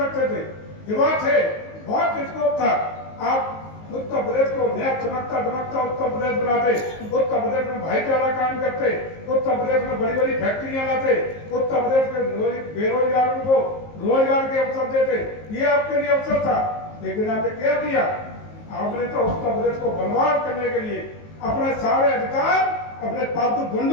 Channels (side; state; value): right; late; 19 ms